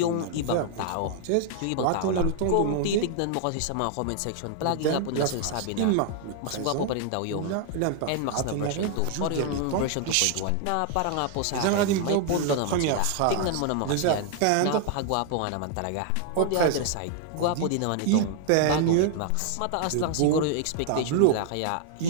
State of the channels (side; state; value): both; different; correlation 0.00